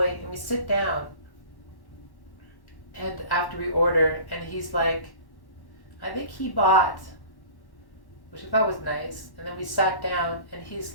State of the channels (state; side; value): late; right; 1.1 ms